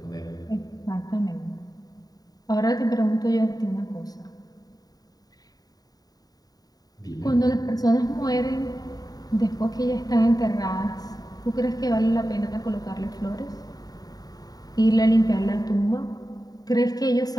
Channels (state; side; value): late; right; 0.18 ms